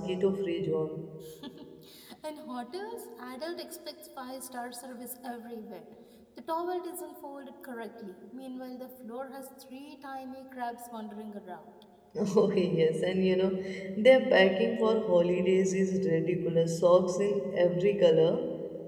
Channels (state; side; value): identical; both; correlation 1.00